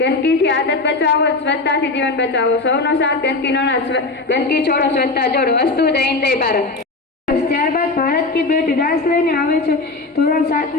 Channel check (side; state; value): right; quieter; 3.4 dB